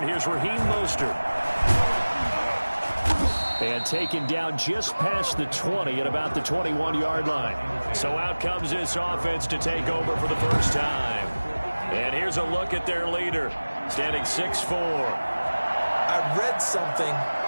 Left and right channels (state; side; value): inverted; both; correlation -1.00